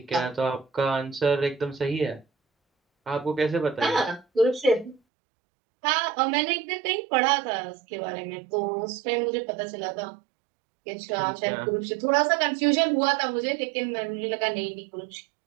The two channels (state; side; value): drops out; left; at 5.0 s